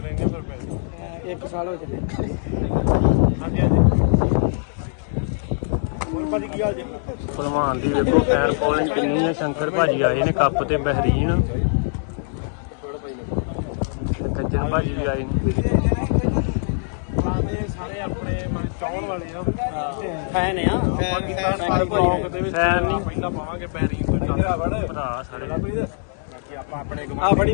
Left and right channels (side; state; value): right; silent; digital silence